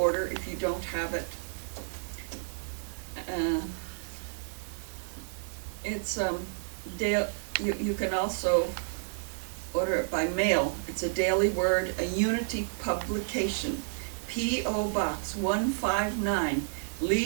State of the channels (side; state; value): left; silent; digital silence